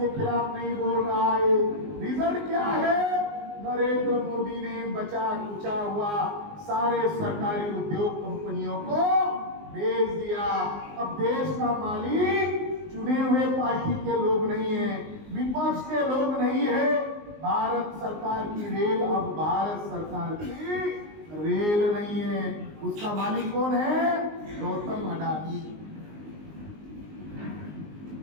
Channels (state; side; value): late; left; 19 ms